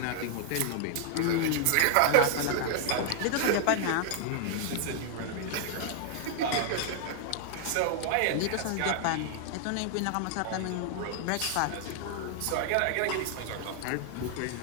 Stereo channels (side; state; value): both; different; correlation 0.00